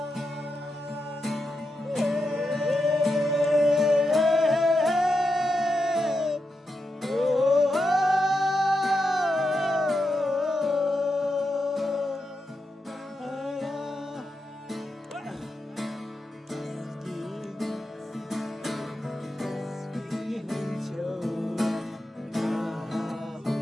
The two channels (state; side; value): normal; both; correlation 0.87